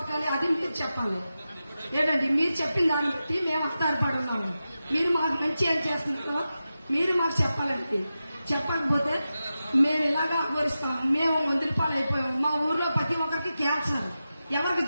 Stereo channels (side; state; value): both; inverted; correlation -0.92